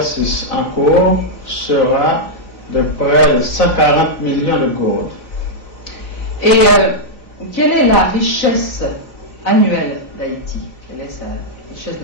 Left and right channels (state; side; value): late; right; 4.0 ms